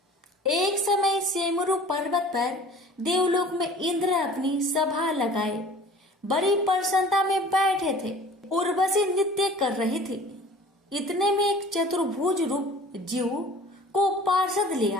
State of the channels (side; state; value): both; normal; correlation 0.46